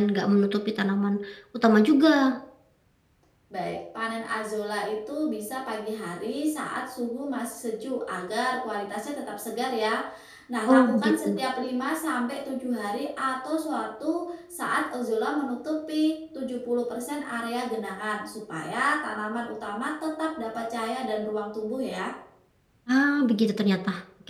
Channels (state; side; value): identical; both; correlation 1.00